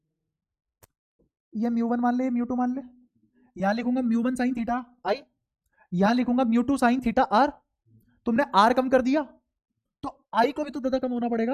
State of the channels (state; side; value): identical; both; correlation 1.00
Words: ये म्यू वन मान ले, म्यू टू मान ले, यहां लिखूंगा mu one sine theta i, यहां लिखूंगा mu two sine theta r. तुमने आर कम कर दिया तो आई को भी तो दादा कम होना